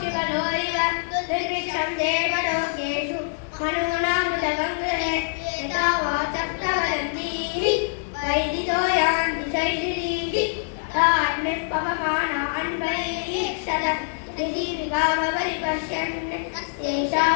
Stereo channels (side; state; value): right; silent; digital silence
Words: इव दुर्भिक्षं देवलोकेषु मनूनामृतगङ्गहे यथा वाचः प्रवदन्तीः वैदितो यान्ति शैशिरीः तान्यः पवमानान् वैक्षत ऋषिविकामपरिपश्यन् एषा